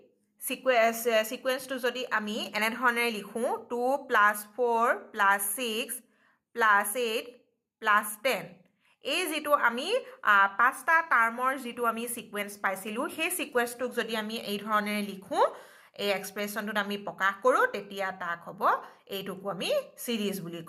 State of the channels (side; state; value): both; identical; correlation 1.00